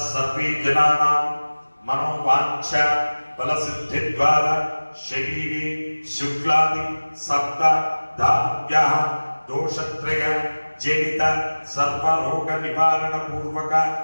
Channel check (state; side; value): inverted; both; correlation -1.00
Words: జనానాం మనోవాంఛ ఫలసిద్ధి ద్వారా శరీరే శుక్లాది సప్త ధాన్యాః దోషత్రయ జనిత సర్వరోగ నివారణ పూర్వక